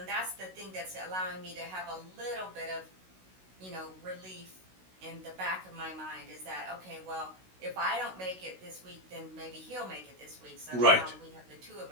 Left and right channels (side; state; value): left; late; 16 ms